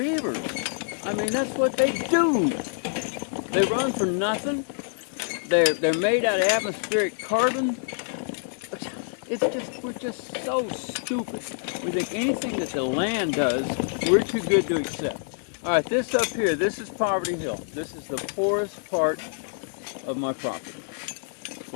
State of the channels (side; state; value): right; silent; digital silence